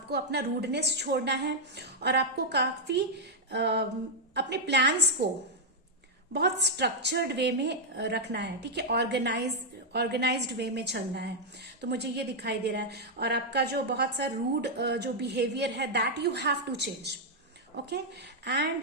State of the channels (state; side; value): normal; both; correlation -0.02